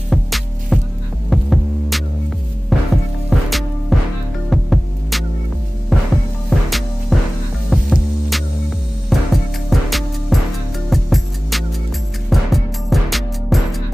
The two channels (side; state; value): both; normal; correlation 0.98